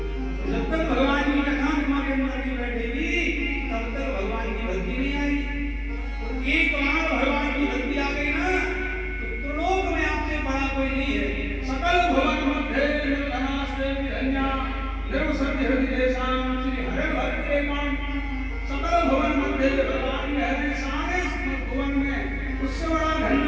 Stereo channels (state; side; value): identical; both; correlation 1.00